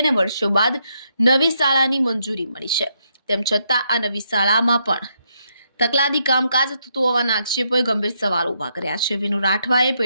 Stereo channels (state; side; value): inverted; both; correlation -0.78